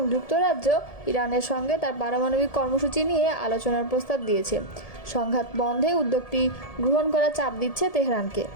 যুক্তরাজ্য ইরানের সঙ্গে তার পারমাণবিক কর্মসূচি নিয়ে আলোচনার প্রস্তাব দিয়েছে। সংঘাত বন্ধে উদ্যোগটি গ্রহণ করার চাপ দিচ্ছে তেহরানকে।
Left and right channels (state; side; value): late; right; 1.7 ms